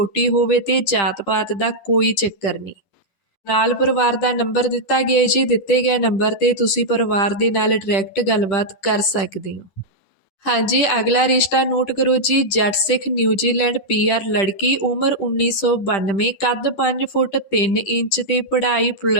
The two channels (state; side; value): late; right; 10 ms